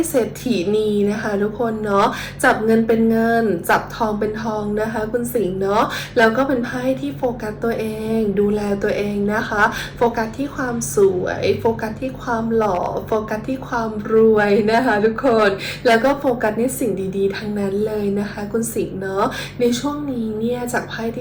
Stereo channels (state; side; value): identical; both; correlation 1.00